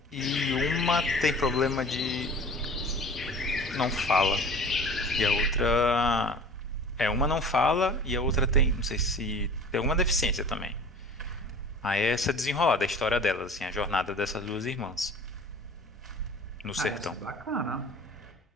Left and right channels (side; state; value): both; normal; correlation 0.41